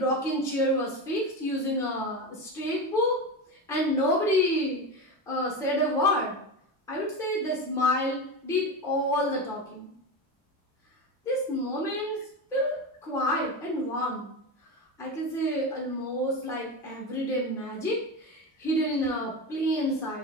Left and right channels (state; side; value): normal; both; correlation 0.21